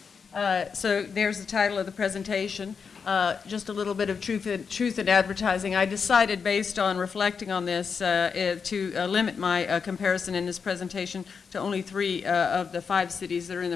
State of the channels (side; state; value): right; quieter; 5.9 dB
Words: So there's the title of the presentation. Just a little bit of truth in advertising. I decided, based on reflecting on this, to limit my comparison in this presentation to only 3 of the 5 cities that are in